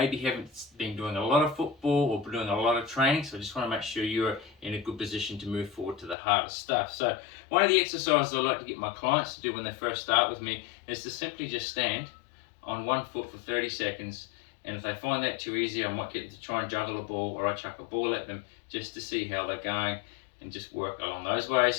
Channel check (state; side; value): drops out; right; at 6.2 s